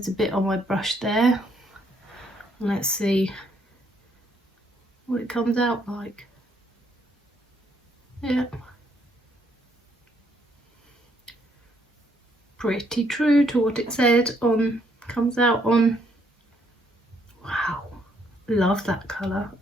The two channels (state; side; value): normal; both; correlation 0.70